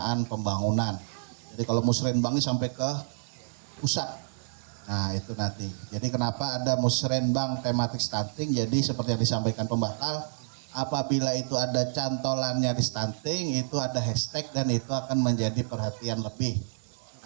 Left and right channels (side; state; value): left; silent; digital silence